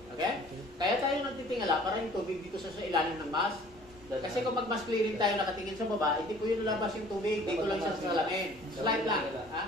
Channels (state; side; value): normal; both; correlation 0.52